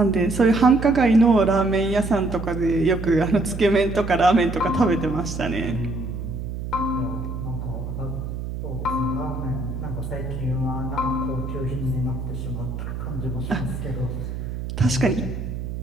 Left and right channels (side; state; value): right; noise; hum, 6 dB below the sound